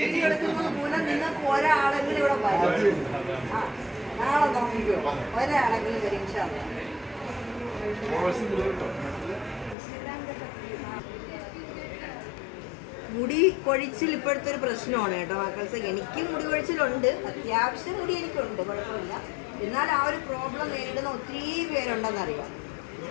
എടുക്കുന്നത് മൂലം നിങ്ങൾക്ക് ഒരാളെങ്കിലും ഇവിടെ വരും. ആ നാളെ നോക്കിക്കോ, ഒരാളെങ്കിലും വരും. മുടി കൊഴിച്ചിൽ ഇപ്പോഴത്തെ ഒരു പ്രശ്നമാണ് കേട്ടോ മക്കൾസ്. എനിക്കും മുടി കൊഴിച്ചിലുണ്ട്, അത്യാവശ്യം മുടി എനിക്കുണ്ട്, കുഴപ്പമില്ല. എന്നാൽ ആ ഒരു പ്രോബ്ലം നേരിടുന്ന ഒത്തിരി പേരുണ്ടെന്നറിയാം.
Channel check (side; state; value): right; drops out; at 9.8 s